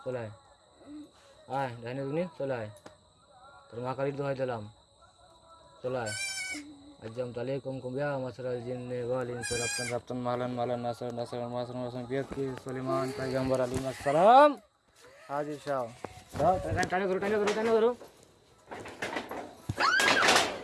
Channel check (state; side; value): identical; both; correlation 1.00